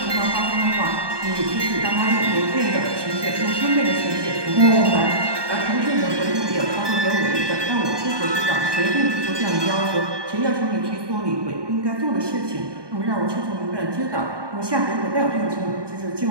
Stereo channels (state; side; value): late; left; 1.2 ms